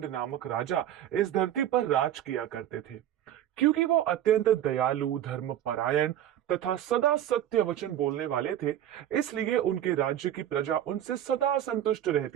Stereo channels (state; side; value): quieter; left; 11.3 dB